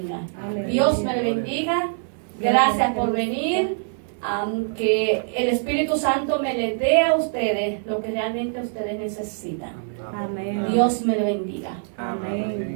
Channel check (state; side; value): silent; left; digital silence